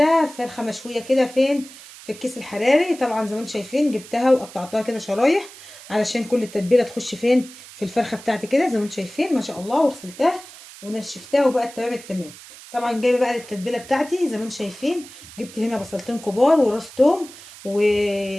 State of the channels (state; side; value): noise; right; hiss, 18 dB below the sound